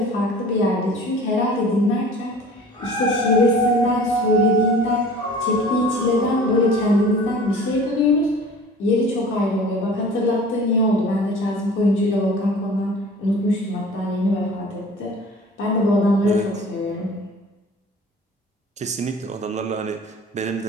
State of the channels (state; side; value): normal; both; correlation 0.44